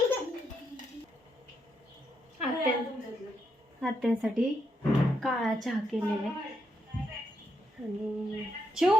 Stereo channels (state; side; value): normal; both; correlation 0.80